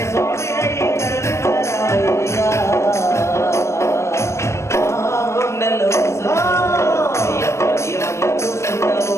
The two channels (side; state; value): right; late; 0.13 ms